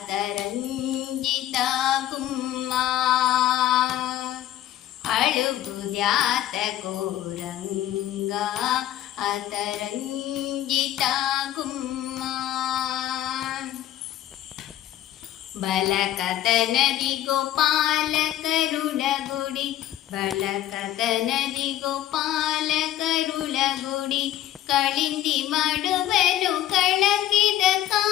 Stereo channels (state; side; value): quieter; right; 12.9 dB